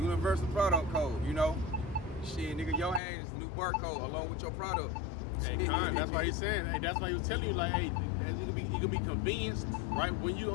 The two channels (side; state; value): right; drops out; at 3.0 s